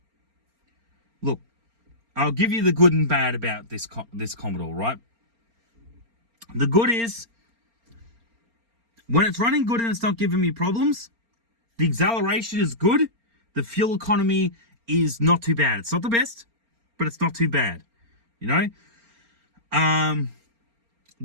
look, I'll give you the good and bad about this Commodore, right? The good is, when it's running good and it's not giving me problems, the acceleration is good, the fuel economy is not too bad. It's not the best, but it's not too bad, you know?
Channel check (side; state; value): left; late; 4.3 ms